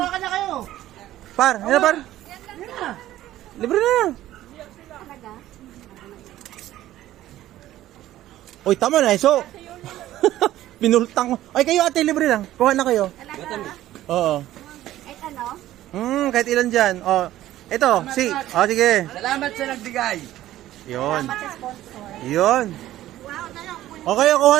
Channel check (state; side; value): quieter; left; 14.1 dB